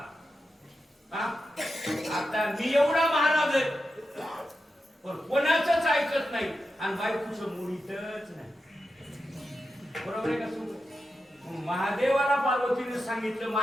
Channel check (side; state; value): both; normal; correlation 0.89